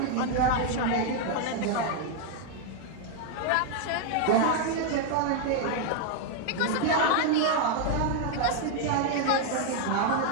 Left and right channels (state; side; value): different; both; correlation 0.00